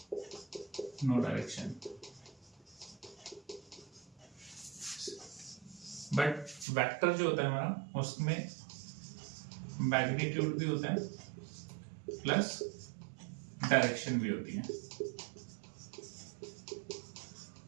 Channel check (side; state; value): left; drops out; at 6.7 s